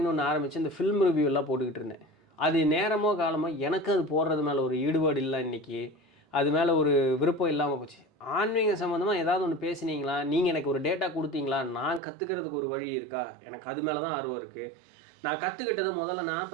ஒன்று ஆரம்பித்து இந்த ஃபில்ம் ரிவ்யூ எல்லாம் போட்டுக்கிட்டு இருந்தேன். அது நேரமோ காலமோ எனக்கு அது போடுறது மேலே ஒரு ஈடுபாடு இல்லை, இன்றைக்கி அது மேலே ஒரு விருப்பம் இல்லாமல் போச்சு. ஆன்மீக சம்மந்தமாக ஏதாவது ஒன்று பேசுனீங்களா, நீங்கள் எனக்கு ஒரு டேட்டா கொடுத்தீங்களா, நான் கற்றுக்கிறதுக்கு ஒரு வழி இருக்கா, எனக்கு அது மேலே தான் ஆர்வம் இருக்குது. நான் கற்றுக்கிட்டதை முதல்ல நான்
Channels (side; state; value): left; drops out; at 12.0 s